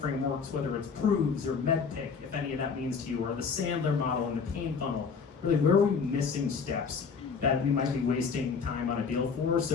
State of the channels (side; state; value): right; quieter; 5.6 dB